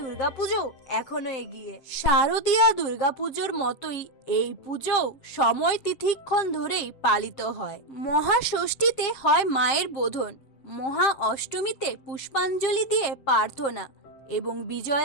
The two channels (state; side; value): late; right; 7.4 ms